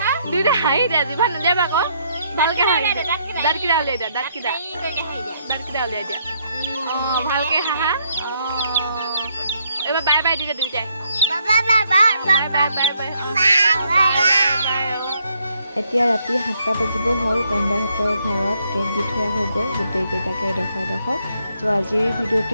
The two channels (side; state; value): both; inverted; correlation -0.72